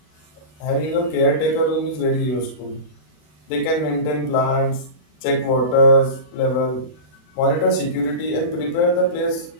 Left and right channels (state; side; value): late; right; 40 ms